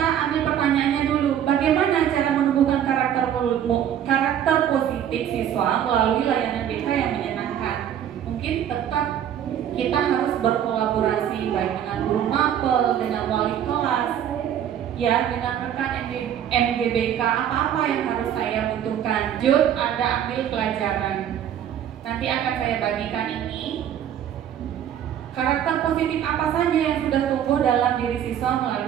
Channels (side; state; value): left; quieter; 9.9 dB